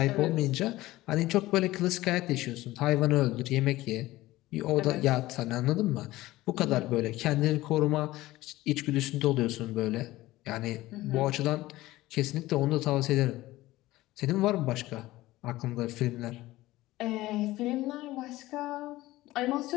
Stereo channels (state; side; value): quieter; right; 17.5 dB